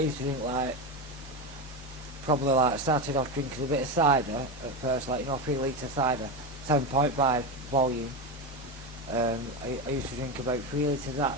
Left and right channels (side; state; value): both; normal; correlation 0.16